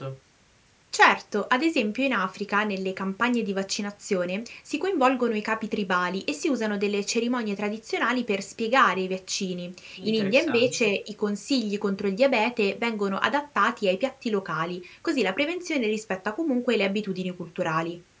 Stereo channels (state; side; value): identical; both; correlation 1.00